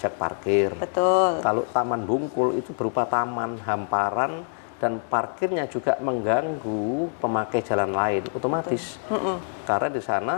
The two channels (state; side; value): silent; right; digital silence